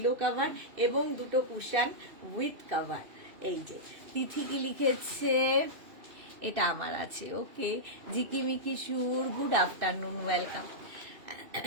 কভার এবং দুটো কুশন উইথ কভার। এই যে তিথি কি লিখেছে, এটা আমার আছে। ওকে, জিকিমিকি সুর, গুড আফটারনুন, ওয়েলকাম।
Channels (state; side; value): late; left; 2.6 ms